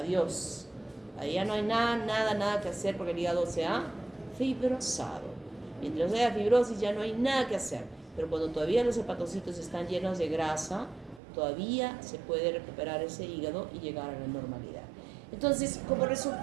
Ahí ya no hay nada que hacer porque el hígado se ha fibrosado. Mientras haya fibrosis ya no hay nada que hacer. Pero cuando todavía los hepatocitos están llenos de grasa, todavía se puede recuperar ese hígado y llegar a la normalidad. Entonces, como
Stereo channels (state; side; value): drops out; left; at 11.2 s